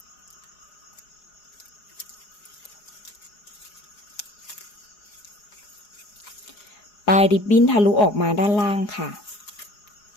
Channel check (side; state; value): right; late; 4.8 ms